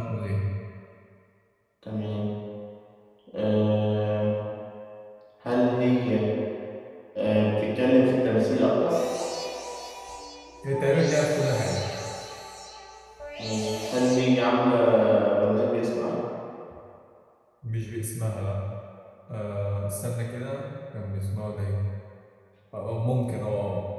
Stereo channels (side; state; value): both; identical; correlation 1.00